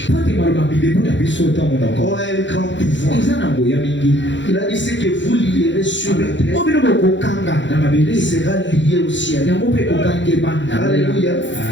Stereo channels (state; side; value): late; right; 0.54 ms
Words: po ete maloba bibebu na biso ntango ont nako un grand pouvoir. eza na ngoya mingi. Il a dit ce que vous lierez sur la terre, o bino bokokanga na mabele il sera lié au ciel. yango mpe kokangema na Alléluia.